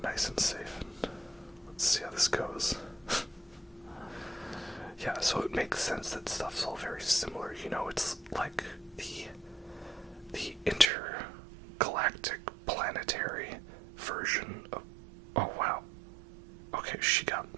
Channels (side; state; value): left; drops out; at 10.9 s